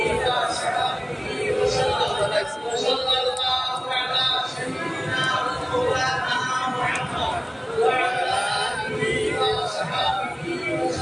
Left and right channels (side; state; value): both; identical; correlation 1.00